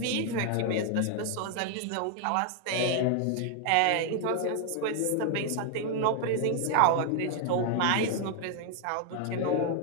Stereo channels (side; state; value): both; different; correlation 0.00